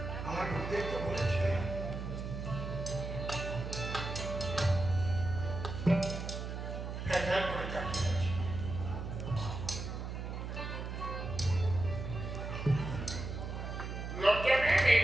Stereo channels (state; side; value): noise; right; hum, 6 dB below the sound